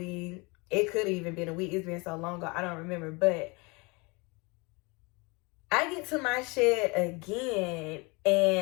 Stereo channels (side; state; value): right; quieter; 27.7 dB